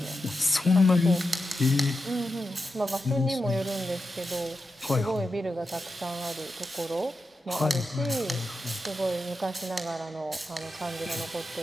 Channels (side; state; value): both; normal; correlation 0.89